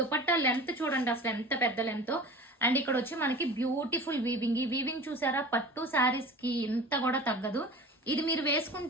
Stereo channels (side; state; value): both; normal; correlation 0.38